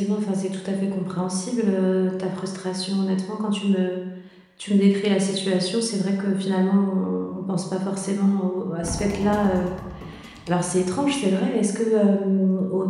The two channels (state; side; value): identical; both; correlation 1.00